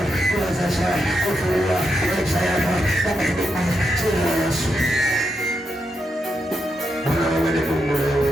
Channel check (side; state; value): both; normal; correlation 0.84